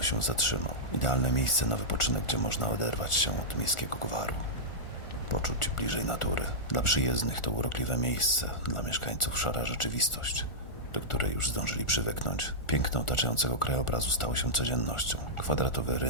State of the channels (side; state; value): right; late; 1.4 ms